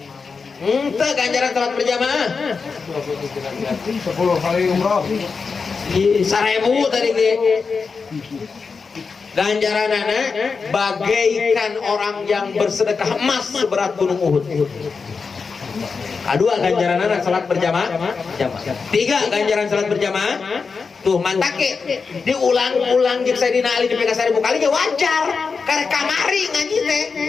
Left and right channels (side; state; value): right; quieter; 5.0 dB